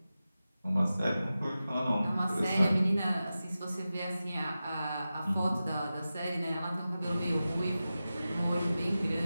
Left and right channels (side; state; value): both; inverted; correlation -0.94